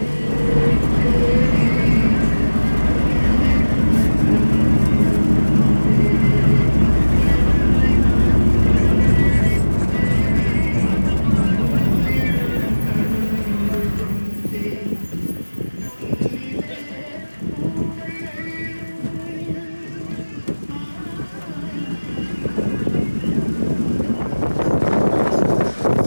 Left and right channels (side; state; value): both; inverted; correlation -1.00